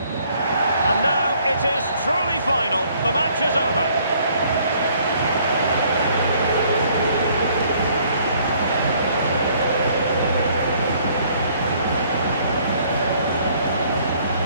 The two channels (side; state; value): both; inverted; correlation -0.62